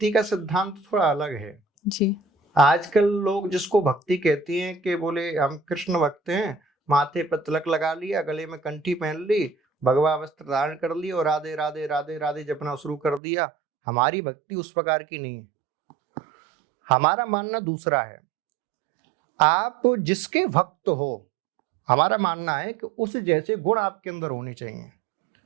का सिद्धांत थोड़ा अलग है जी। आजकल लोग जिसको भक्ति कहती हैं कि बोले हम कृष्ण भक्त हैं, माथे पर तिलक लगा लिया, गले में कंठी पहन ली, भगवा वस्त्र धारण कर ली और राधे राधे राधे राधे जपना शुरू कर दिया। हमारी भक्ति उस प्रकार की नहीं है। हमारा मानना दूसरा है। आप जिसके भक्त हो, हमारा मानना है कि उस जैसे गुण आपके अंदर होने चाहिए।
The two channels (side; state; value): left; drops out; at 13.2 s